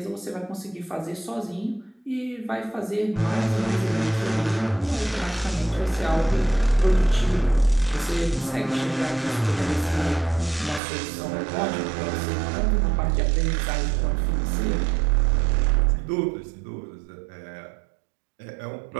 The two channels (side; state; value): left; drops out; at 10.8 s